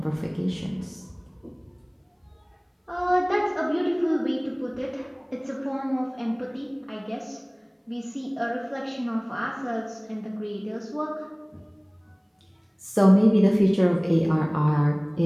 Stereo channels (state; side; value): identical; both; correlation 1.00